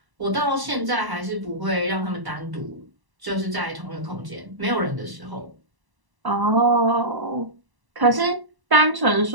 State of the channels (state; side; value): late; left; 1.0 ms